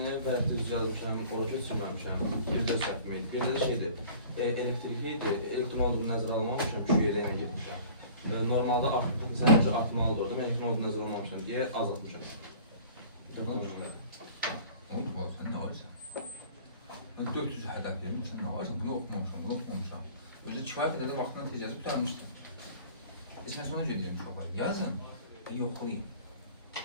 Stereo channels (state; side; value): inverted; both; correlation -0.46